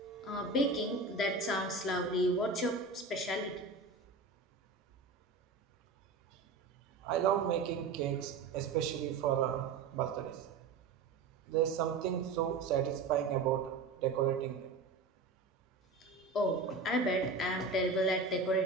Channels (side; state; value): left; quieter; 4.0 dB